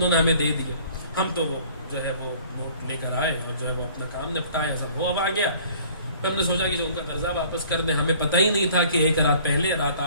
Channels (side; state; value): both; inverted; correlation -0.52